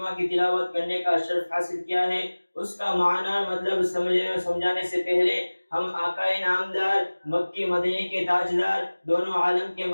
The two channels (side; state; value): both; inverted; correlation -1.00